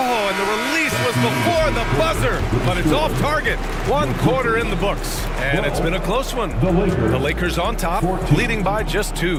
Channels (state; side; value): identical; both; correlation 1.00